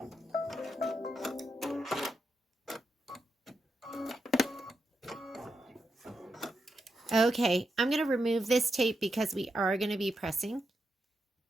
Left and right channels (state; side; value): normal; both; correlation 0.85